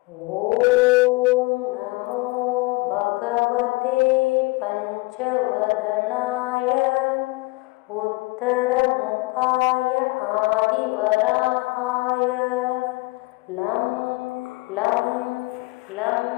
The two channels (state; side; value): quieter; right; 23.9 dB